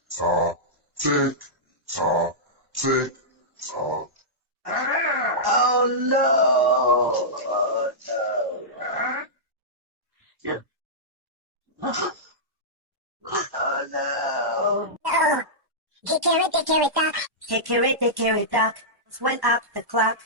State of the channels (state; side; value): late; left; 1.1 ms